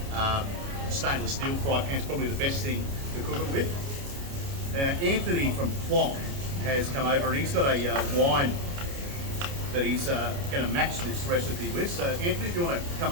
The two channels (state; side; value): late; left; 29 ms